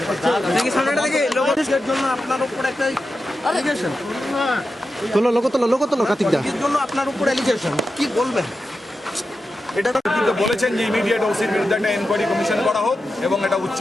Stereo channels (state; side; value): normal; both; correlation 0.90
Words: সামনেটা থেকে লোকের জন্য আপনার উপর একটা অ্যালিগেশন তোলো লোক তোলো কার্তিকদা এর জন্য আপনার উপর অ্যালিগেশন কি বলবেন? এটা বলেছেন যে ইমিডিয়েট ওসির বিরুদ্ধে একটা এনকোয়ারি কমিশন করা হোক এবং একটা উচ্চ